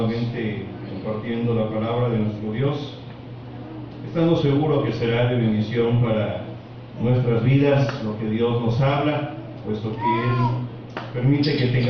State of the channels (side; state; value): both; identical; correlation 1.00